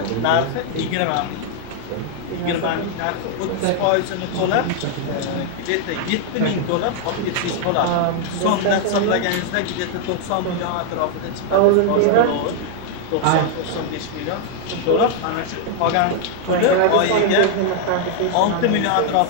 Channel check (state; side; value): different; both; correlation 0.00